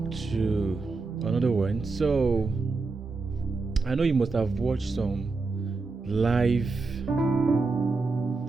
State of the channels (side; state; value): left; quieter; 3.9 dB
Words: to another one. So I know you must have watched some live